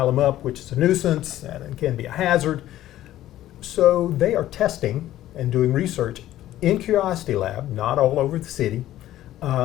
them up, which is a nuisance and it can be a hazard. So they are testing and doing research in Curiosity Lab, not all over the city,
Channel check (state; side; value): quieter; right; 13.7 dB